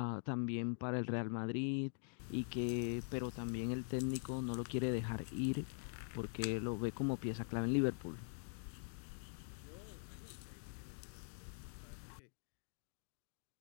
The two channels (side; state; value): right; silent; digital silence